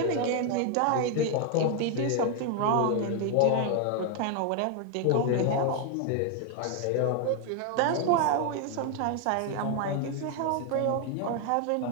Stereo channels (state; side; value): different; both; correlation 0.00